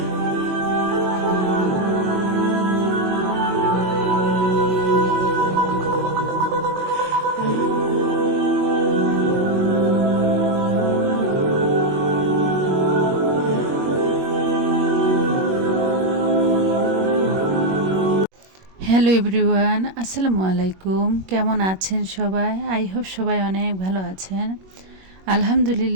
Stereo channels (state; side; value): late; left; 21 ms